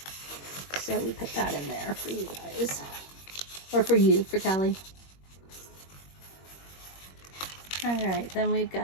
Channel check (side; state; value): right; late; 21 ms